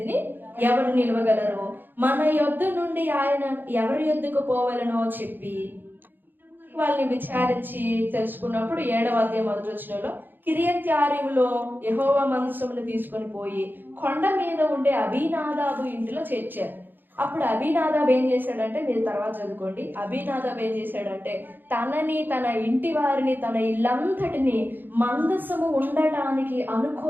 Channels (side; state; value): left; late; 0.093 ms